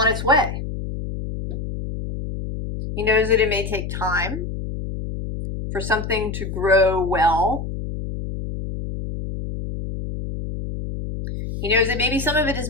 its way. He knows that it may take time for something to grow well. He knows that maybe some of it is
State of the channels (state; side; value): noise; left; hum, 6 dB below the sound